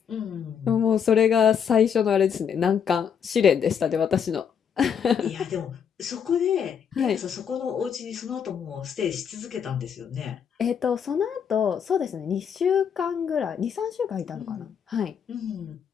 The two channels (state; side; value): quieter; right; 7.5 dB